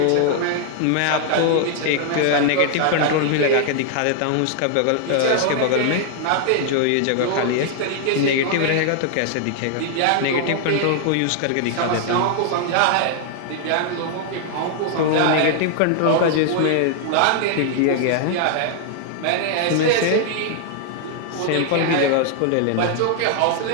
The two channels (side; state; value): both; different; correlation 0.00